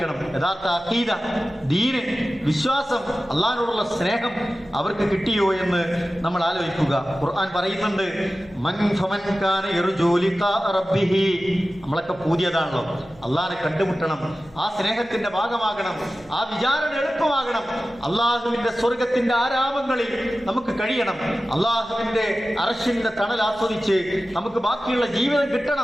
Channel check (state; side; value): noise; left; hum, 25 dB below the sound